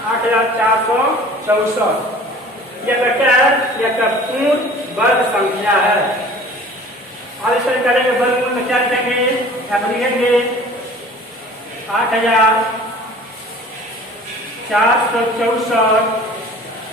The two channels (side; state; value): both; normal; correlation 0.45